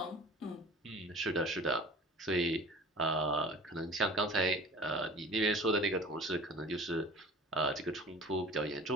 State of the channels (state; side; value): normal; both; correlation 0.42